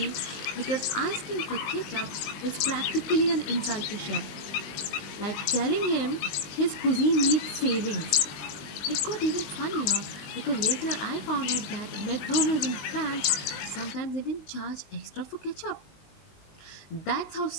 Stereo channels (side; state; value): right; late; 20 ms